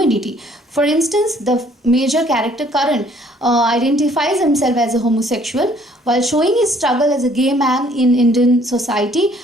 For instance, the major character Karan identifies himself as a homosexual while showing his struggle as a gay man in Indian society.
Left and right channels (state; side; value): normal; both; correlation 0.60